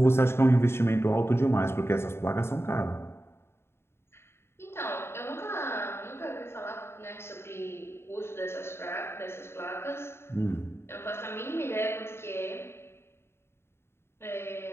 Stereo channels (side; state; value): right; late; 0.12 ms